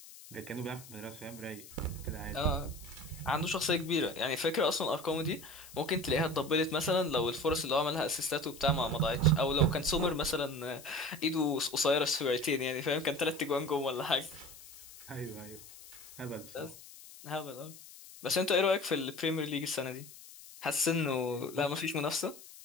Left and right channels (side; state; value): left; noise; hiss, 18 dB below the sound